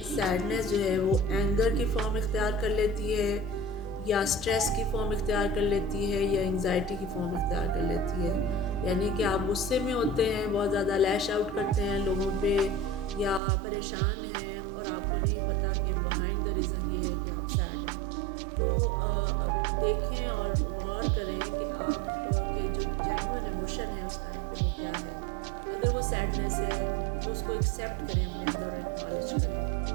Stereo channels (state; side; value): drops out; left; at 13.4 s